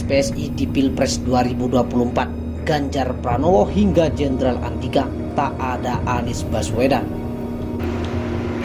PSI di Pilpres 2024, Ganjar Pranowo hingga Jenderal Andika, tak ada Anies Baswedan.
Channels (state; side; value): identical; both; correlation 1.00